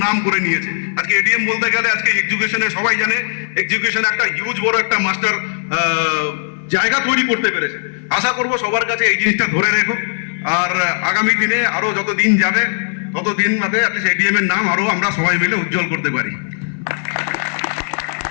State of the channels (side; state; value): right; silent; 68 dB below the other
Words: নাম করে নিয়েছে। আজকে এডিএম বলতে গেলে আজকে এডুকেশনে সবাই জানে এডুকেশন একটা হিউজ বড় একটা মাস্টার জায়গা তৈরি করতে পেরেছে। আশা করব সবার কাছে এই জিনিসটা ধরে রেখো, আর আগামী দিনে আরো যত দিন যাবে তত দিন বাদে এডিএম এর নাম আরো আমরা সবাই মিলে উজ্জ্বল করতে পারি।